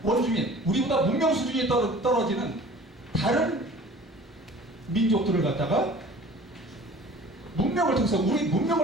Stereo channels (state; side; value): normal; both; correlation 0.46